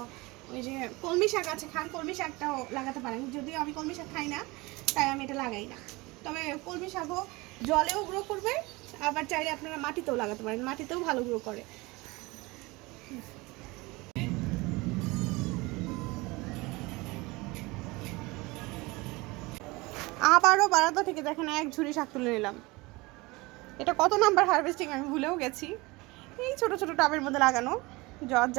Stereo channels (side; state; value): left; quieter; 23.3 dB